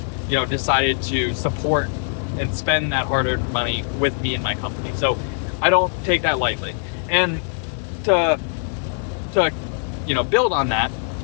decided to support and spend that hard-earned money with me and my company. So I don't take that lightly. And to build on that,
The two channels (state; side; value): silent; right; 58 dB below the other